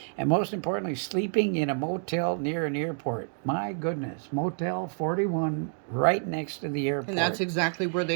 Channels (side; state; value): left; silent; 59 dB below the other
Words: And most importantly, sleeping in a motel near an airport. My goodness, Motel 41 right next to the airport. And that's exactly where